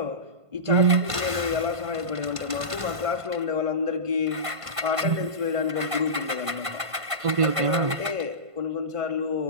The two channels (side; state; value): left; late; 1.5 ms